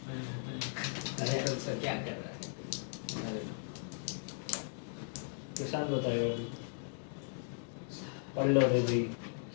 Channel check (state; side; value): silent; right; digital silence